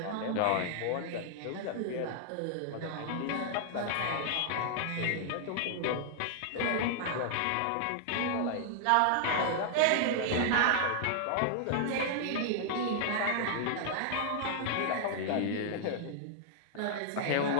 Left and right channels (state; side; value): different; both; correlation -0.01